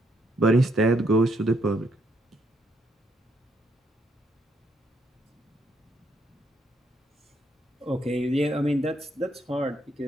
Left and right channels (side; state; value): both; normal; correlation 0.73